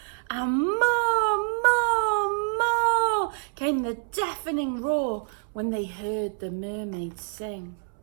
and more, more, more came the deafening roar when they heard the mermaid sing.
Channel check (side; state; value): left; silent; 60 dB below the other